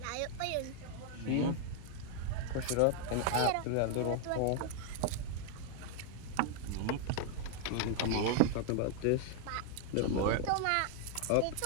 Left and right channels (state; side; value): different; both; correlation 0.00